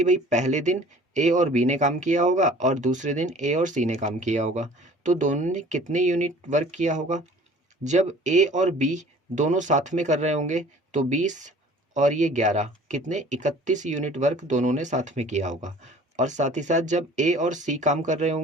भाई पहले दिन ए और बी ने काम किया होगा और दूसरे दिन ए और सी ने काम किया होगा। तो दोनों ने कितने यूनिट वर्क किया होगा, जब ए और बी दोनों साथ में कर रहे होंगे तो 20 और ये 11, कितने 31 यूनिट वर्क दोनों ने साथ में किया होगा। और साथ ही साथ जब ए और सी काम कर रहे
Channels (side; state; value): both; normal; correlation 0.49